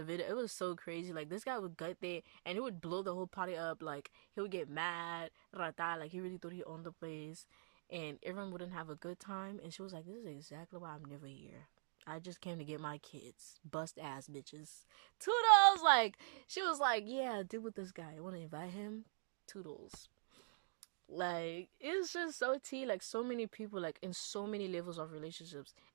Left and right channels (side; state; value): left; silent; digital silence